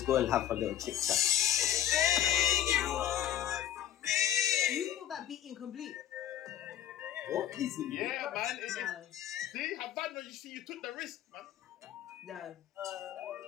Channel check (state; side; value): quieter; right; 11.2 dB